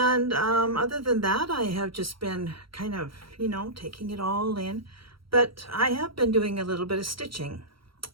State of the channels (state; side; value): late; left; 0.74 ms